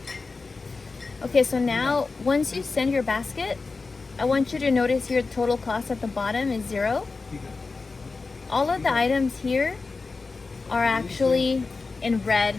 Okay, so now once you send your basket, I want you to notice here the total cost at the bottom is 0. All of the items here are actually in red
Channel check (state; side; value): quieter; right; 4.1 dB